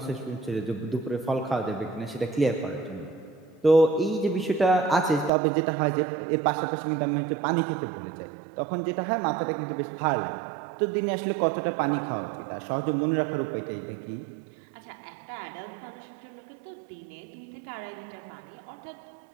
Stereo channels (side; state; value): left; drops out; at 5.3 s